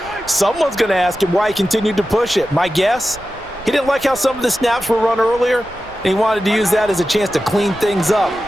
someone's going to ask him why he continued to push it. My guess, he didn't like how some of the snaps were run earlier, and he wanted to use that as a chance to clean things up.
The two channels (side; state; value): right; noise; rumble, 21 dB below the sound